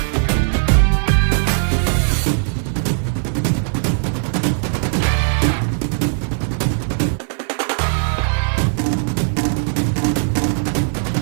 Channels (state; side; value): silent; left; 55 dB below the other